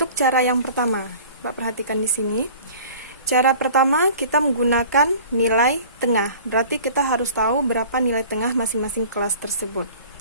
cara yang pertama, Mbak perhatikan di sini. Cara pertama kita menggunakan nilai tengah. Berarti kita harus tahu berapa nilai tengah masing-masing kelas tersebut.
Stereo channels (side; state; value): both; inverted; correlation -0.45